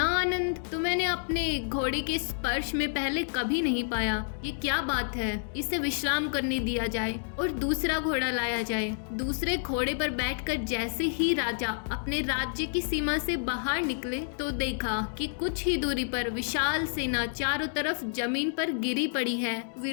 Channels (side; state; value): right; silent; digital silence